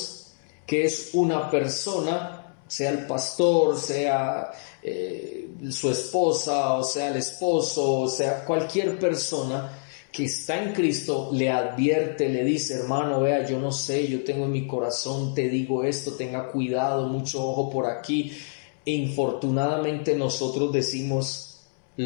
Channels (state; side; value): silent; right; 61 dB below the other